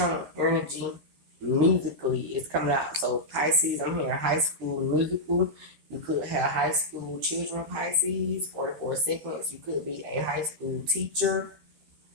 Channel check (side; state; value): left; late; 13 ms